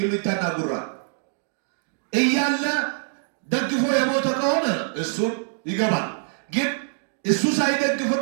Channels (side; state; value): left; silent; digital silence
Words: ጉራ እያለ ደግፎ የሞተ ከሆነ እሱን ይገባል። ግን እሱ